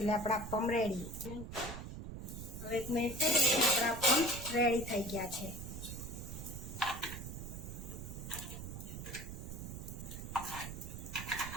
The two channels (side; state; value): right; noise; rumble, 8 dB below the sound